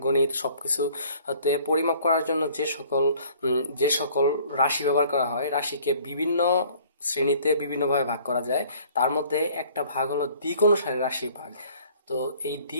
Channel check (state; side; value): inverted; both; correlation -0.55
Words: গণিত সবকিছু তে পরিমাপ করার জন্য যে সকল রাশি ব্যবহার করা হয়, রাশিকে বিভিন্ন শ্রেণীতে বিভিন্নভাবে ভাগ করা যায়। তার মধ্যে একটা ভাগ হলো দিক অনুসারে রাশির ভাগ। তো এই